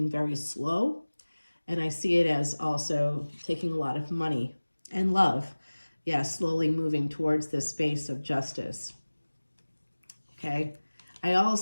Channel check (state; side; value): inverted; both; correlation -1.00